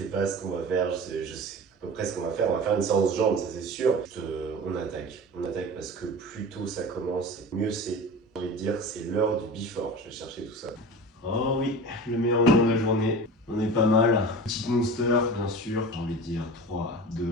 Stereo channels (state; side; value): normal; both; correlation 0.34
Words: pas ce qu'on va faire, je sais à peu près ce qu'on va faire une séance jambes, ça c'est sûr. On attaque parce que plus tôt ça commence, mieux c'est. J'ai envie de dire c'est l'heure du before, je vais chercher tout ça. Oh oui, le meilleur moment de la journée. On est pas mal. Petite monster, bien sûr. J'ai envie de dire 3,